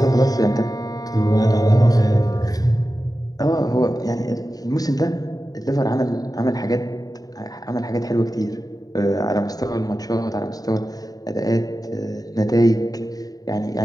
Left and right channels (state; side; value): late; right; 0.18 ms